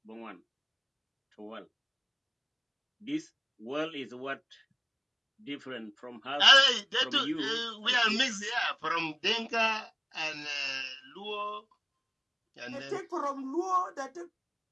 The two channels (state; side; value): identical; both; correlation 1.00